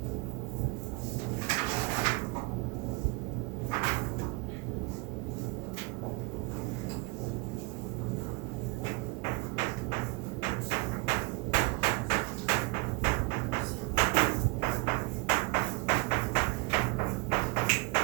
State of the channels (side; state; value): left; quieter; 27.1 dB